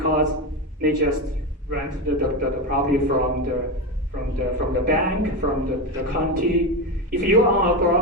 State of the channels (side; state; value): both; normal; correlation 0.16